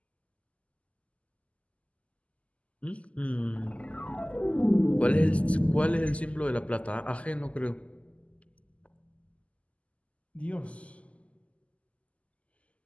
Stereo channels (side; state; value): right; late; 0.064 ms